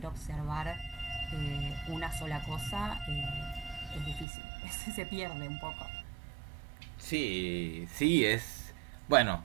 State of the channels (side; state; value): left; drops out; at 4.2 s